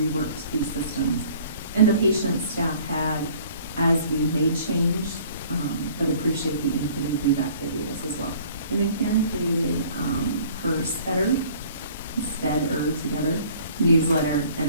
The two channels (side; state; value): both; inverted; correlation -0.53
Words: these systems. And the patient staff had, as we made change, but appreciate the input and feedback they gave us as well. And then Karen created her Spedder together newsletter, and